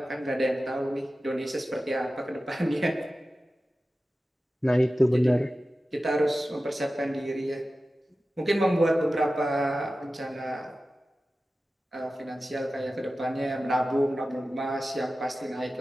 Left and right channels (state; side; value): normal; both; correlation 0.94